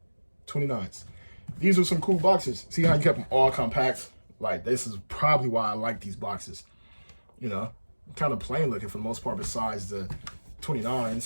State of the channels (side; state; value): both; inverted; correlation -1.00